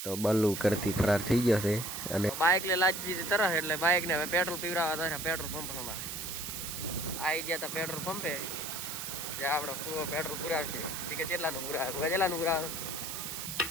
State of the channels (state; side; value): noise; right; hiss, 6 dB below the sound